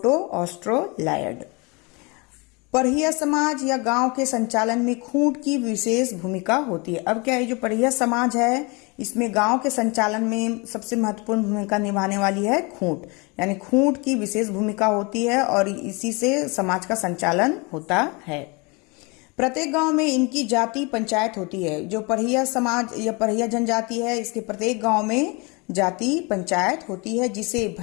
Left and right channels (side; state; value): right; quieter; 28.7 dB